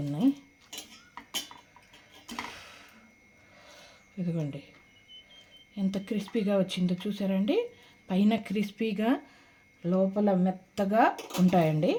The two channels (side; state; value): both; identical; correlation 1.00